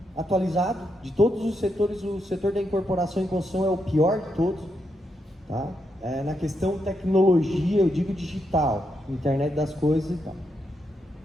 atualizado. De todos os setores, o setor da incorporação e construção é o pior de todos, tá? Na questão tecnologia, eu digo digital, internet das coisas e tal.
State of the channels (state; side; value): normal; both; correlation 0.82